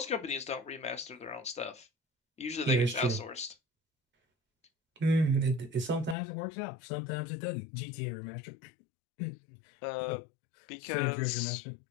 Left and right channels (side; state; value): right; drops out; at 6.2 s